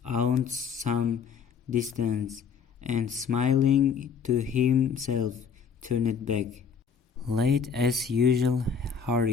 aunt some distance, and smiling to himself, turned back. Late as usual,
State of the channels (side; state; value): right; quieter; 6.4 dB